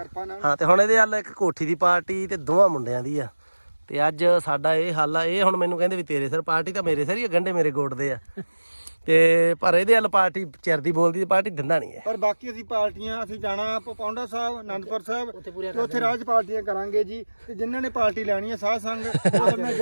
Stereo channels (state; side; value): inverted; both; correlation -1.00